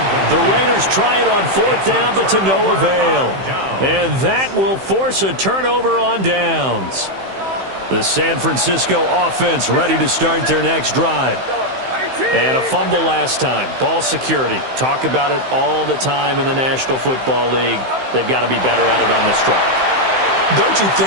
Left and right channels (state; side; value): late; left; 15 ms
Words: The Raiders try it on 4th down, but to no avail. And that will force a turnover on downs. The San Francisco offense ready to start their next drive. And a fumble last time. Ball security. Talk about it all the time in the National Football League. They've got to be better at it on this drive. Don't you